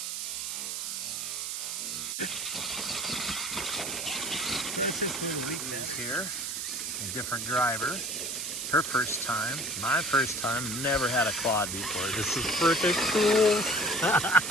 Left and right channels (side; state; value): right; noise; hiss, 4 dB below the sound